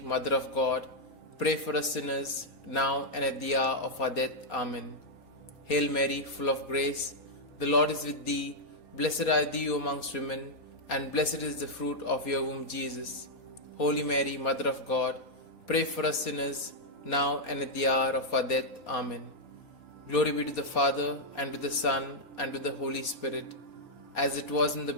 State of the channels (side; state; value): right; late; 4.2 ms